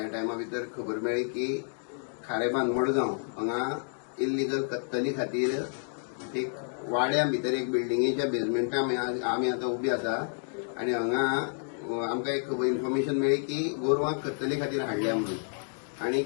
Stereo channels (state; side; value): silent; right; digital silence